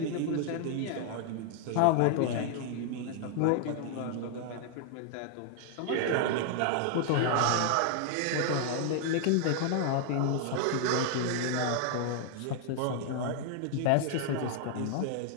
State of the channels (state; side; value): different; both; correlation 0.00